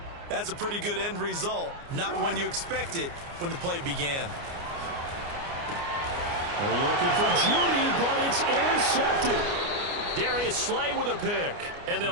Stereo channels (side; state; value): left; late; 29 ms